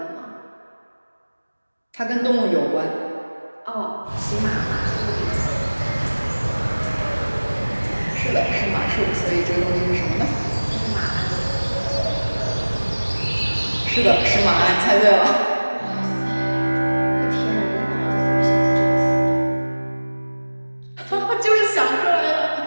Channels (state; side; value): inverted; both; correlation -1.00